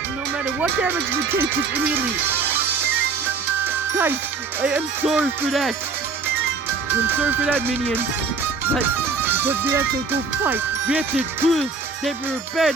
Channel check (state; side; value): quieter; left; 4.7 dB